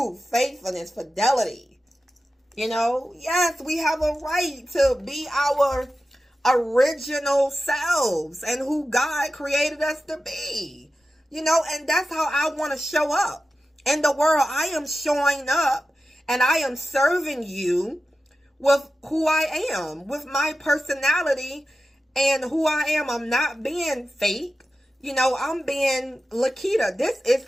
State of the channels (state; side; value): normal; both; correlation 0.93